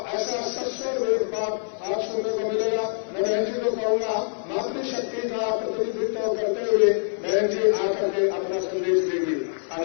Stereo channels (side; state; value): right; silent; digital silence